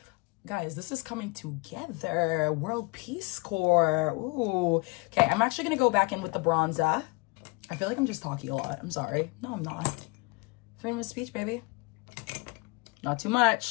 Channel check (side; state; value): right; quieter; 27.0 dB